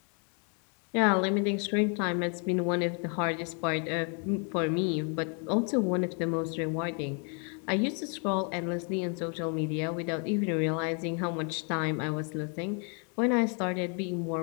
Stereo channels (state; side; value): quieter; right; 38.9 dB